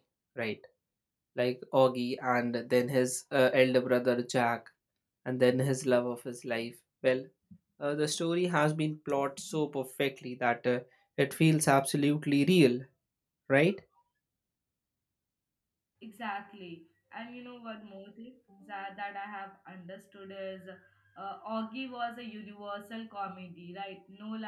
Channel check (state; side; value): identical; both; correlation 1.00